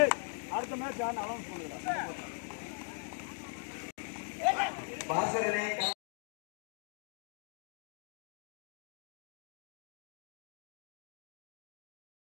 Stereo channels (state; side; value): silent; right; 51 dB below the other